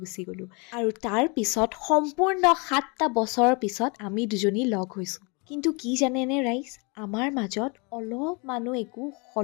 গুচি গ'লোঁ আৰু তাৰ পিছত সম্পূৰ্ণ 7টা বছৰৰ পিছত আমি দুজনী লগ হৈছোঁ কিন্তু কি জানেনে ৰাইজ আমাৰ মাজত অলপমানো একো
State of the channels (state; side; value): quieter; right; 31.1 dB